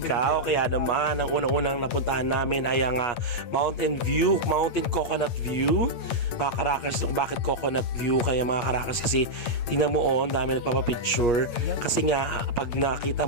Kaya naman, ang unang-unang napuntahan namin ay ang Mountain Coconut View. Mga ka-rockers, bakit Coconut View? Kaya mga ka-rockers, kasi tingnan mo dami nagpapapicture. Kasi nga, pag nakita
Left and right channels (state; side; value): late; right; 8.9 ms